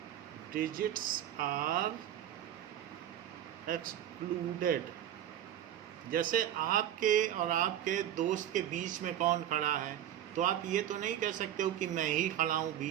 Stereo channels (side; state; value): left; quieter; 11.3 dB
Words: डिजिट्स आर एक्सक्लूडेड, जैसे आपके और आपके दोस्त के बीच में कौन खड़ा है, तो आप ये तो नहीं कह सकते हो कि मैं ही खड़ा हूँ